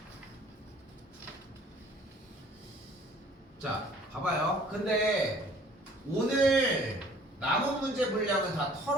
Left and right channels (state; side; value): normal; both; correlation 0.54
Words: 자, 봐봐요. 근데 오늘 남은 문제 분량은 다